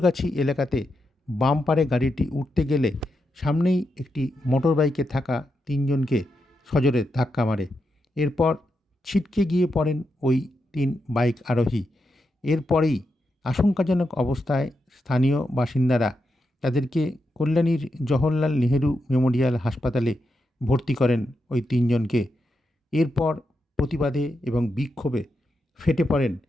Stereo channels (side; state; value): both; normal; correlation 0.85